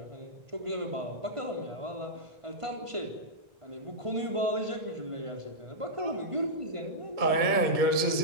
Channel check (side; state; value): left; late; 2.1 ms